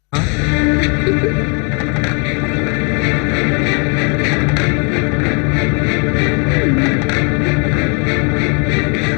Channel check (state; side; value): quieter; right; 34.7 dB